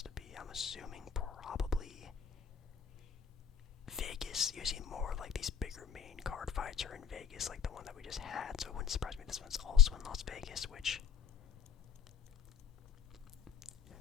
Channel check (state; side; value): quieter; right; 7.8 dB